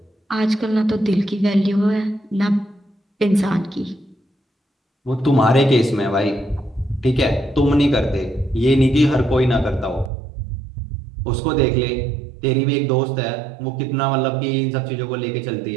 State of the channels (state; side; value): drops out; left; at 10.1 s